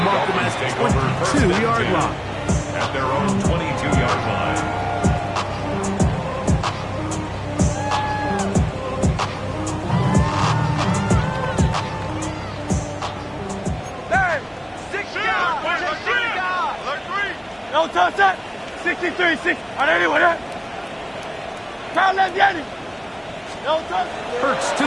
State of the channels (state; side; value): identical; both; correlation 1.00